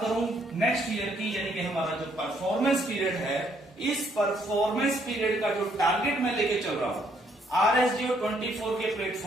करूं नेक्स्ट ईयर की, यानी कि हमारा जो परफॉर्मेंस पीरियड है, इस परफॉर्मेंस पीरियड का जो टारगेट मैं लेके चल रहा हूं RSGO 24 के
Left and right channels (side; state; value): both; normal; correlation 0.69